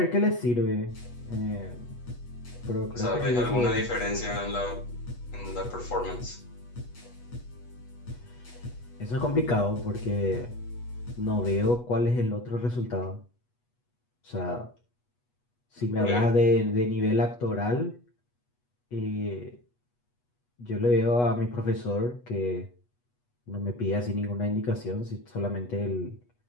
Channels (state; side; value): late; right; 8.2 ms